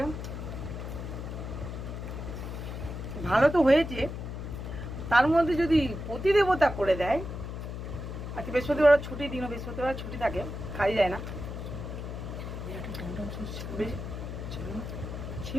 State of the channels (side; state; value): left; noise; hum, 7 dB below the sound